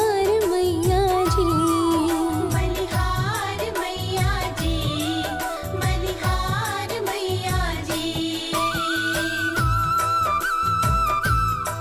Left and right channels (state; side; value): identical; both; correlation 1.00